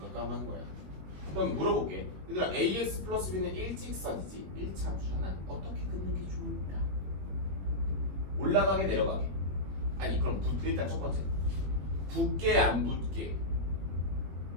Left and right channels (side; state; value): left; late; 21 ms